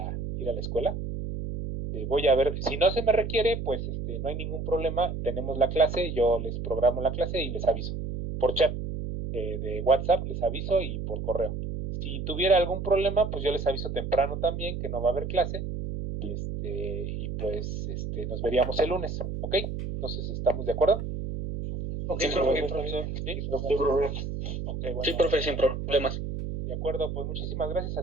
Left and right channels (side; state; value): right; noise; hum, 5 dB below the sound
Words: escuela. Voy a ver, si no se me requiere, pues no hay ningún problema, tenemos la clase, yo les programo la clase y les aviso, por chat de WhatsApp les aviso y por correo. Si tuviera algún problema, pues yo les aviso temprano también que no va a haber clase y pues nos veríamos el lunes, ¿ok? Entonces, ¿estamos de acuerdo? Okay, sí, profesor. ¿Sí? Okay, bueno. Sí, profe, sin problemas. De acuerdo, pues muchísimas gracias